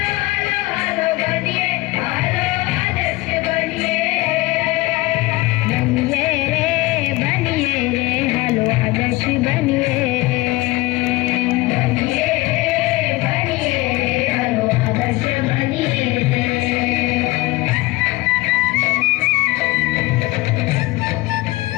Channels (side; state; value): right; quieter; 20.5 dB